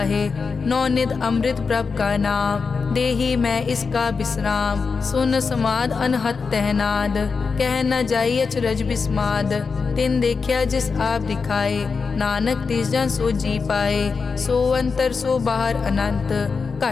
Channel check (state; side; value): quieter; right; 5.0 dB